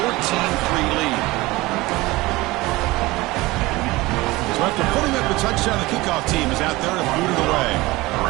14-3 lead. So after putting up the touchdown, the kickoff team is out there to boot it away.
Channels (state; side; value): quieter; left; 20.5 dB